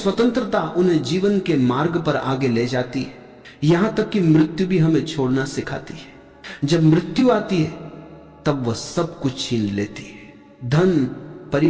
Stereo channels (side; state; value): both; identical; correlation 1.00